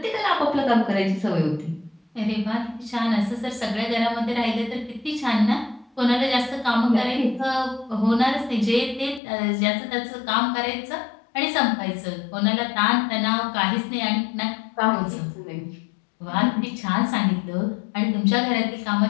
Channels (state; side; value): drops out; right; at 9.2 s